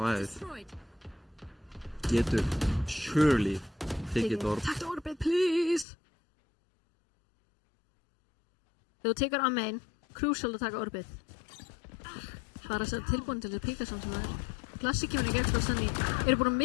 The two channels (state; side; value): drops out; right; at 5.9 s